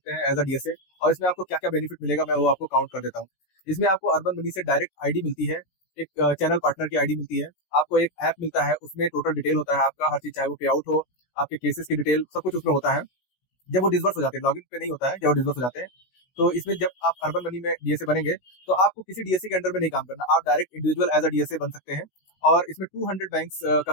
हैं एज अ डीएसए। और इसमें आपको क्या क्या बेनिफिट मिलेगा, मैं वो आपको काउंट कर देता हूँ। इसमें आपको अर्बन मनी से डायरेक्ट आईडी मिलती है, एक चैनल पार्टनर की आईडी मिलती है। आपको एक ऐप मिलता है, उसमें टोटल डिटेल होता है आपका, हर चीज, चाहे वो पे आउट हो, आपके केसेस की डिटेल, सब कुछ उसमें होता है। जब वो डिसबर्स हो जाते हैं, लॉगिन पे नहीं होता है, जब वो डिसबर्स हो जाते हैं, तो इसमें जब आप अर्बन मनी में डीएसए बनेंगे, तो आपको किसी डीएसए के अंडर में नहीं काम करना, आप direct individual as a DSA बन सकते हैं। और इसमें 200 बैंक्स का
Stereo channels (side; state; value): right; late; 16 ms